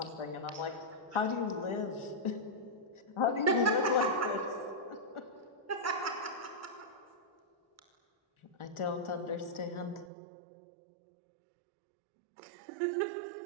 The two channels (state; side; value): drops out; left; at 10.1 s